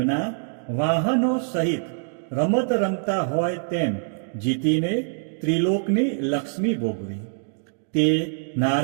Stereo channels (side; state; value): left; silent; digital silence